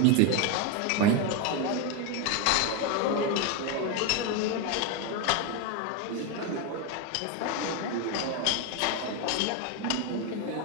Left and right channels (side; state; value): both; different; correlation 0.02